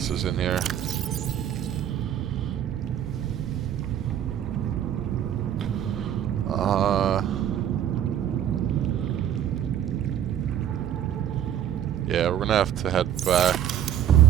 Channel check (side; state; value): left; quieter; 10.2 dB